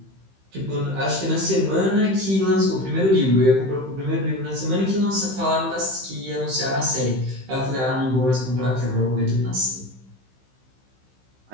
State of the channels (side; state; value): left; late; 15 ms